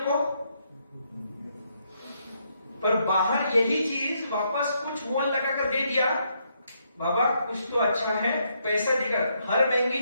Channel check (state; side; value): inverted; both; correlation -0.76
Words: पर बाहर यही चीज वापस कुछ मोल लगा कर दे दिया, बाबा कुछ तो अच्छा है, पैसा देकर। हर महंगी